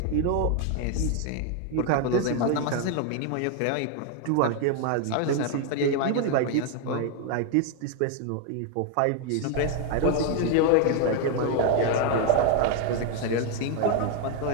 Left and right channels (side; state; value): both; different; correlation 0.01